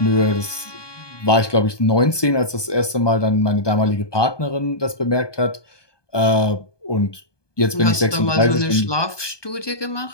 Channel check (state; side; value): late; right; 1.2 ms